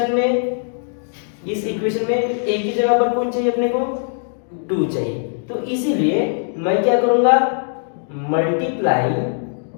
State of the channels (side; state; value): right; silent; digital silence